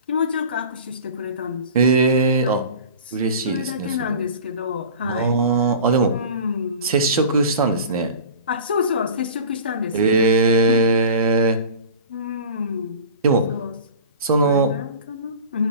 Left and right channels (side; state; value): both; inverted; correlation -0.38